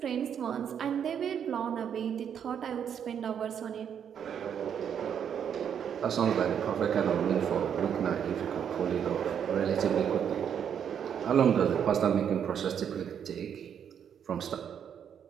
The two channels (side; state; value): left; quieter; 8.3 dB